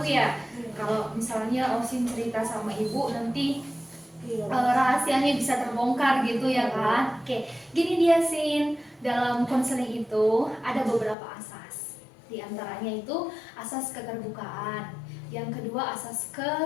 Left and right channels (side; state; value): right; drops out; at 11.2 s